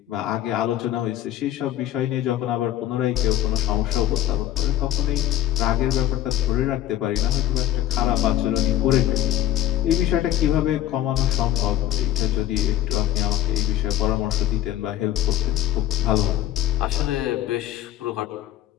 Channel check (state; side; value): quieter; right; 12.8 dB